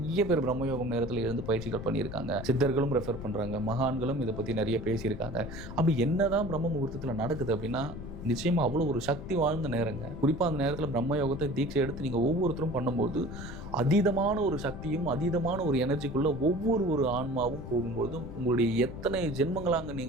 பேர் பிரம்மயோகம் நேரத்தில் இருந்து பயிற்சிகள் பண்ணியிருக்காங்க, சித்தர்களும் ரெஃபர் பண்றாங்க, மகான்களும் இதை பத்தி நிறைய பேசியிருக்காங்க. அப்படி என்னதான் பிரம்ம முகூர்த்தத்துல நடக்குது அப்படின்னா, நிச்சயமா அவ்வளோ ஒரு சக்தி வாழ்ந்த நேரங்க. குறிப்பா அந்த நேரத்தில் பிரம்மயோகத்தை தீட்சை எடுத்து நீங்க ஒவ்வொருத்தரும் பண்ணும்போது அதீதமான ஒரு சக்தியும் அதீதமான ஒரு எனர்ஜிக்குள்ள ஒவ்வொரு ஆன்மாவும் போகும்போது, உங்களுடைய எத்தனை ஜென்மங்களாக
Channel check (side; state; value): left; noise; rumble, 10 dB below the sound